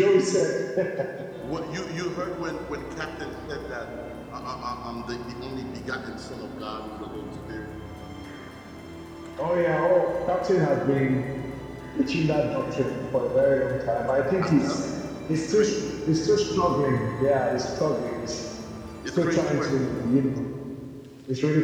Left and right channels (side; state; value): both; identical; correlation 1.00